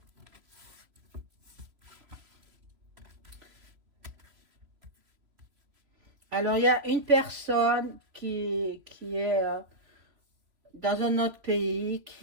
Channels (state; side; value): late; left; 3.0 ms